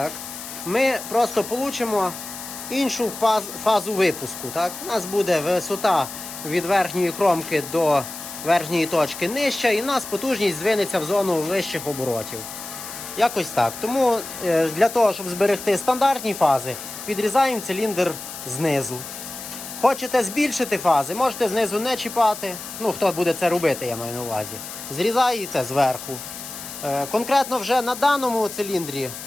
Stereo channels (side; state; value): left; noise; hiss, 10 dB below the sound